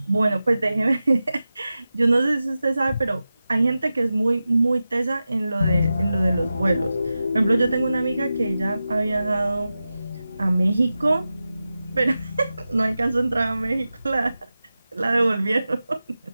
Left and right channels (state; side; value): inverted; both; correlation -0.93